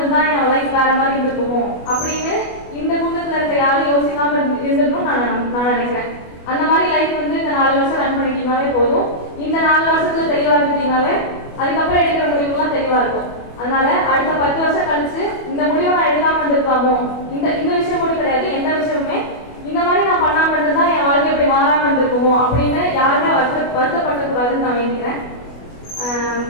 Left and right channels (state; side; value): late; right; 25 ms